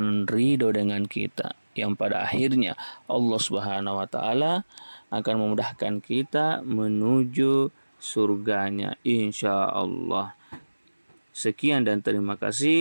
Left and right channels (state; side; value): inverted; both; correlation -1.00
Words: ridho dengan kita, yang pada akhirnya Allah Subhanahu wa taala akan memudahkan kita menuju surganya insyaallah. Sekian dan terima